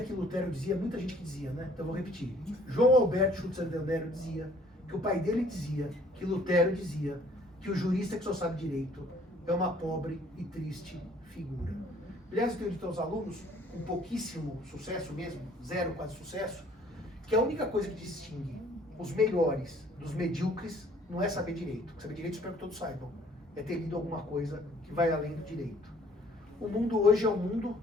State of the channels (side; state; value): both; normal; correlation 0.58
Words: que Lutero dizia, muita gente que dizia, né? Então eu vou repetir. João Alberto Schutzer Del Nero dizia que o pai dele dizia, que Lutero dizia, que o jurista que só sabe direito é uma pobre e triste figura. Aliás, eu tenho dito aos alunos, com pouquíssimo sucesso mesmo, zero quase sucesso, que a única coisa que distingue os melhores dos medíocres não é saber direito. Saber direito, espero que todos saibam. É ter lido alguma coisa que vai além do direito. O mundo hoje é um mundo